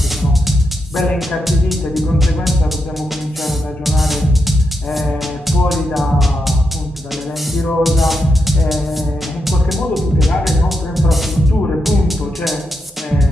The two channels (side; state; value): both; normal; correlation 0.84